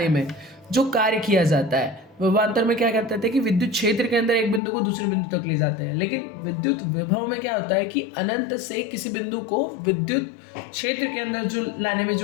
में जो कार्य किया जाता है, विभवांतर में क्या कहते थे कि विद्युत क्षेत्र के अंदर एक बिंदु को दूसरे बिंदु तक ले जाते हैं। लेकिन विद्युत विभव में क्या होता है कि अनंत से किसी बिंदु को विद्युत क्षेत्र के अंदर जो लाने में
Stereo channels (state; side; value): drops out; right; at 4.6 s